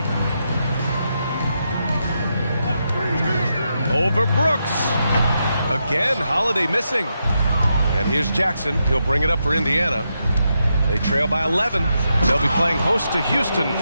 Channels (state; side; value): inverted; both; correlation -0.84